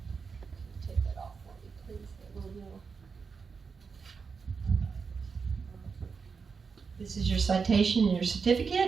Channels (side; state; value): left; quieter; 5.4 dB